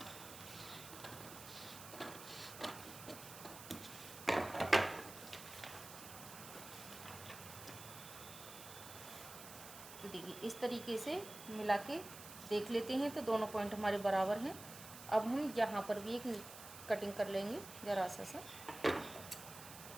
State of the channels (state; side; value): noise; right; hiss, 13 dB below the sound